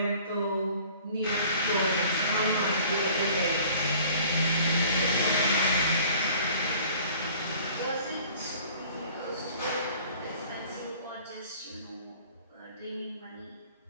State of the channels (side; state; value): both; inverted; correlation -0.50